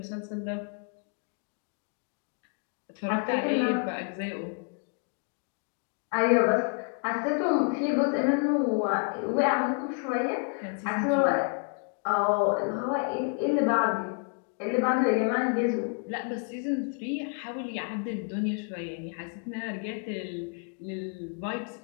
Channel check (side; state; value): right; quieter; 39.0 dB